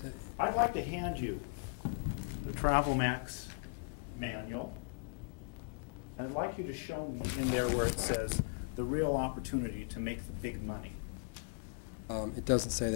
I'd like to hand you the TravelMax manual. I'd like you to show me in there where it says the real opportunity to make the big money. It doesn't say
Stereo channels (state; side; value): quieter; right; 37.5 dB